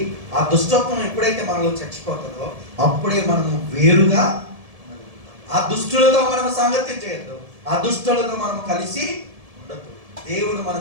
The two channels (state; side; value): late; left; 1.7 ms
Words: ఆ దుష్టత్వం ఎప్పుడైతే మనలో చచ్చిపోతుందో అప్పుడే మనము వేరుగా, ఆ దుష్టులతో మనం సాంగత్యం చేయొద్దు, ఆ దుష్టులతో మనం కలిసి ఉండద్దు. దేవుడు